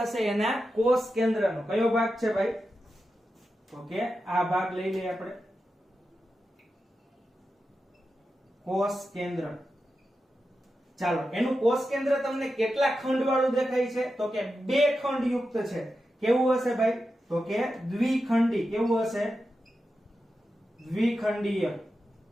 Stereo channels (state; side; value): normal; both; correlation 0.90